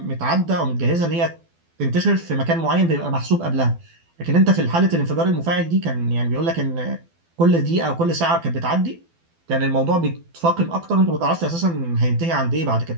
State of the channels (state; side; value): late; left; 12 ms